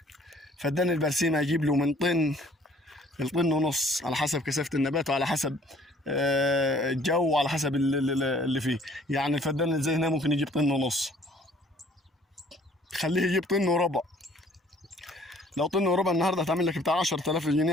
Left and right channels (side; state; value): both; normal; correlation 0.57